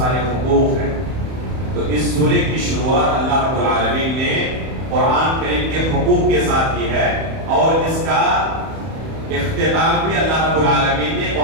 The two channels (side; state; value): left; late; 31 ms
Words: حقوق ہیں، تو اس سورے کی شروعات اللہ رب العالمین نے قرآن کریم کے حقوق کے ساتھ کی ہے، اور اس کا اختتام بھی اللہ رب العالمین نے